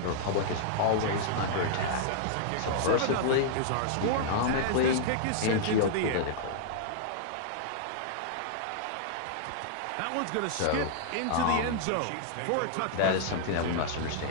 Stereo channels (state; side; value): different; both; correlation -0.01